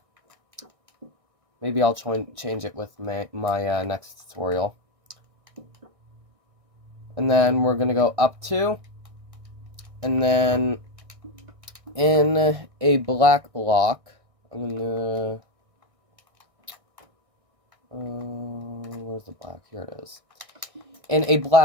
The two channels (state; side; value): late; left; 1.6 ms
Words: Maybe I'll change it with my next tutorial. And then we're going to go up 2, and then in a black block, I'm going to, where's the black? Here it is. In a